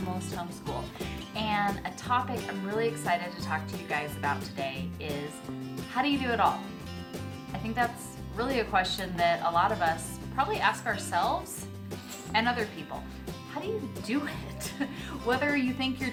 Homeschool, and a topic I'm really excited to talk to you guys about today is how do you do it all? I think that's really a question that a lot of us probably ask ourselves and other people. How do you do it? Whether you think you're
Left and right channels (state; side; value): identical; both; correlation 1.00